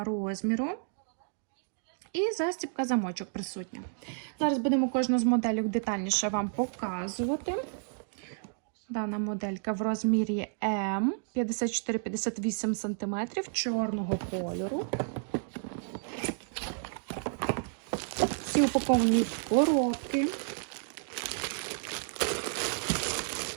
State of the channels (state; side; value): silent; left; digital silence